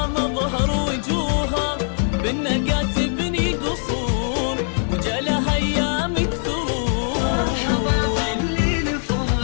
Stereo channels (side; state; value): right; silent; 64 dB below the other